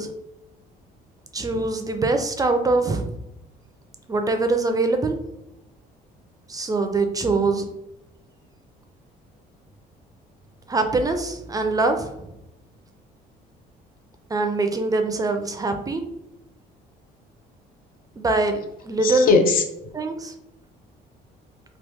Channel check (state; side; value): normal; both; correlation 0.54